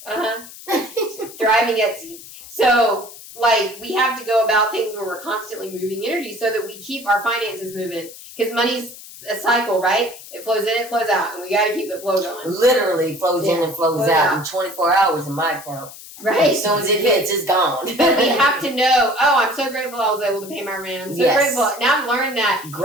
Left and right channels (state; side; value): noise; left; hiss, 16 dB below the sound